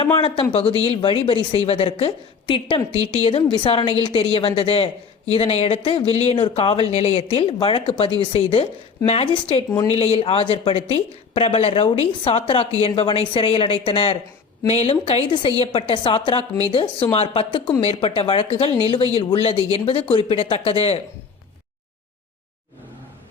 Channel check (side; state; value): right; quieter; 5.5 dB